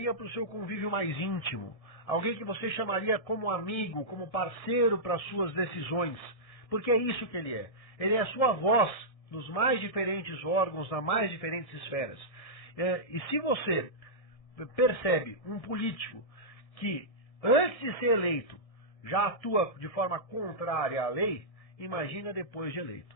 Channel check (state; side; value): late; right; 1.7 ms